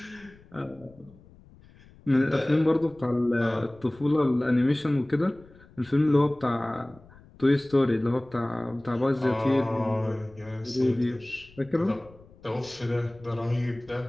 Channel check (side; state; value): left; noise; rumble, 25 dB below the sound